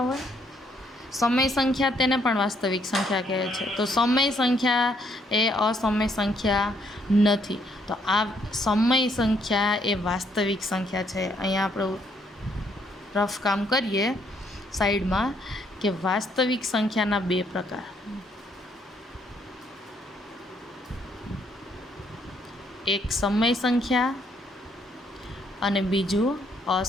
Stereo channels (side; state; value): both; normal; correlation 0.70